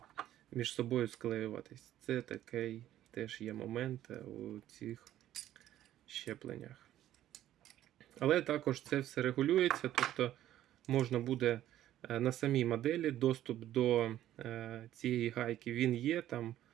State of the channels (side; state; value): left; quieter; 12.7 dB